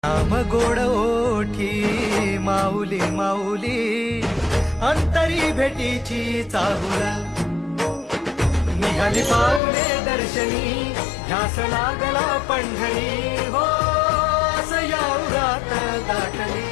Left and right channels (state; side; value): drops out; right; at 9.6 s